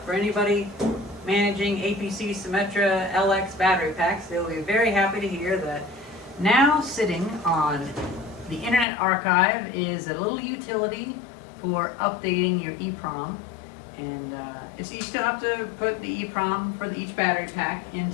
for anybody managing APC Symmetra LX battery packs, they'll be very happy to hear that now sitting on the Internet Archive is a little utility for updating your EEPROM. And you still have to put the EEPROM for each battery pack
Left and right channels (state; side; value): drops out; right; at 8.8 s